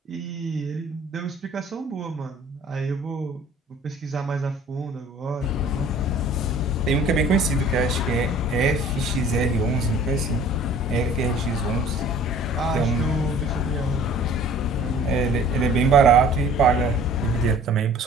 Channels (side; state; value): both; normal; correlation 0.49